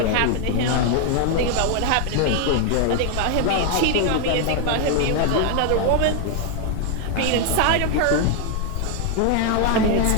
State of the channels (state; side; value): different; both; correlation 0.00